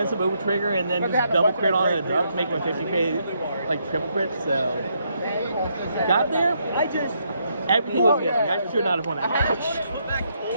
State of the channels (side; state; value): both; inverted; correlation -0.76